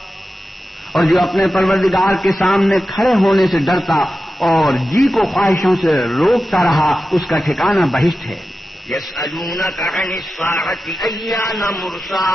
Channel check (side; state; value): both; normal; correlation 0.93